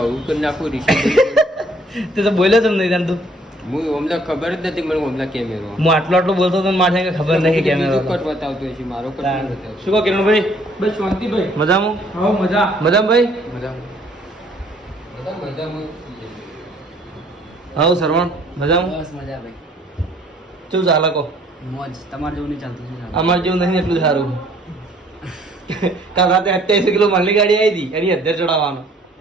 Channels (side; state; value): both; normal; correlation 0.61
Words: કરી નાખું રિશી તે તો બોલ્યો તમે નહીં તું. હું અમને ખબર જ નથી મને અમને કેમેરો હું આટલું બોલતો તો મારે ખબર નહીં કેમેરો કટ બતાવતો છે મારો કટ નહીં બતાવતો. શું કહો કિરણભાઈ? બસ શાંતિભાઈ. મજામાં? હા મજા. મજામાં ભાઈ? મજામાં હા સરવણ મજામાં? બસ મજા ભાઈ. શું ચાલે કહો? મોજ. તમારે જેવું નહીં ચાલતું છે. અમારે જેવું નહીં એટલું સારું. કાલ રાતે 28 કિલો માલની ગાડી આવી હતી એની અધ્ધર ચડાવવાનો.